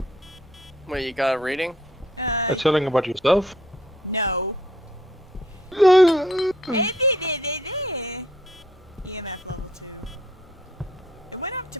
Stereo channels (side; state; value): both; normal; correlation 0.65